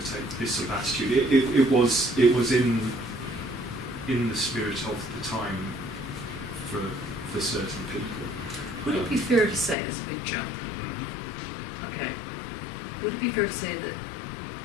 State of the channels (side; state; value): right; drops out; at 9.8 s